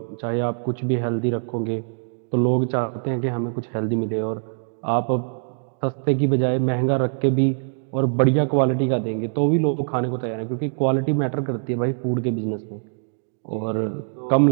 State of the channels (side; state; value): left; silent; digital silence